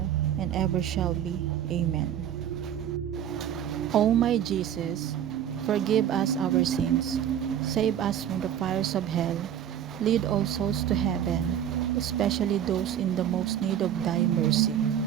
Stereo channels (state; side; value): quieter; left; 9.9 dB